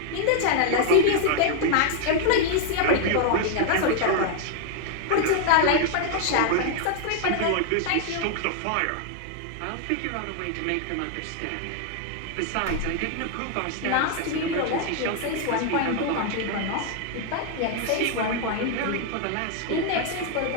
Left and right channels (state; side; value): different; both; correlation 0.00